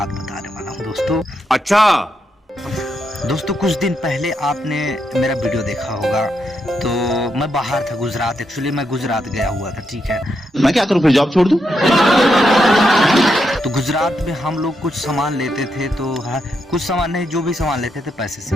बताने वाला हूँ दोस्तों। अच्छा दोस्तों, कुछ दिन पहले आपने मेरा वीडियो देखा होगा। तो मैं बाहर था, गुजरात। एक्चुअली मैं गुजरात गया हुआ था, ठीक है। मैं क्या करूं, फिर जॉब छोड़ दूं? तो गुजरात में हम लोग कुछ सामान लेते थे, तो कुछ सामान नहीं, जो भी सामान लेते थे पैसे से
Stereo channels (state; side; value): normal; both; correlation 0.81